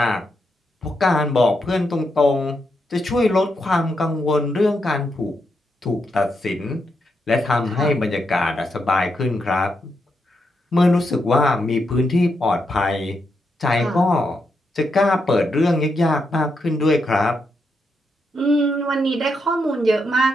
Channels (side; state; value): both; normal; correlation 0.82